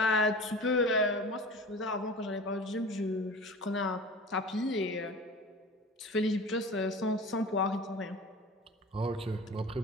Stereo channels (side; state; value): both; normal; correlation 0.37